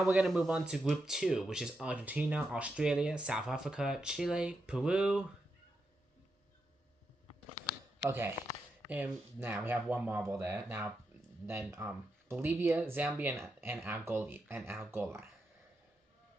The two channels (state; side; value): normal; both; correlation 0.85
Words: we're going to move on to Group 2, which is Argentina, Australia, South Africa, Chile, Peru. Okay, and now we have one marble there. Now, then Bolivia, Zambia, and Angola.